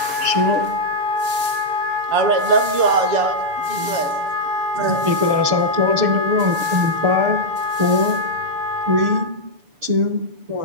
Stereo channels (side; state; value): left; late; 6.9 ms